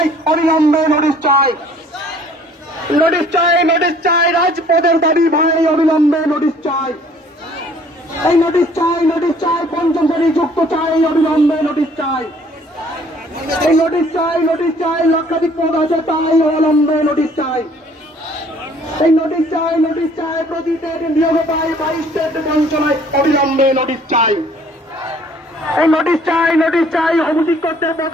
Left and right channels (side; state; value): both; normal; correlation 0.57